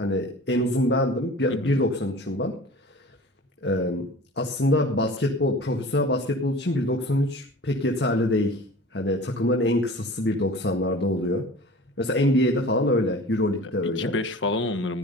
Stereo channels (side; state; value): both; normal; correlation 0.41